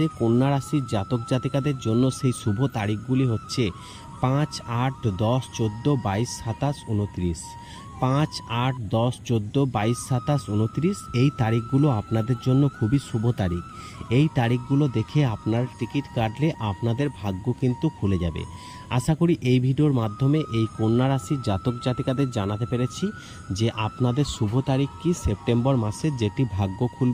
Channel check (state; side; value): identical; both; correlation 1.00